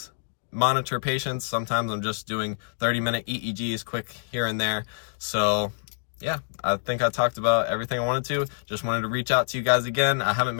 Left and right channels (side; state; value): right; silent; digital silence